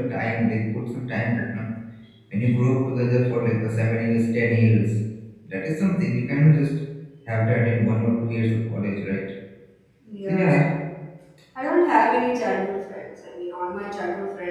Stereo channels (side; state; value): both; identical; correlation 1.00